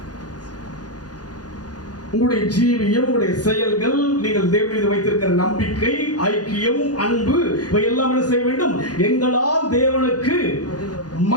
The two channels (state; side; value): late; right; 0.69 ms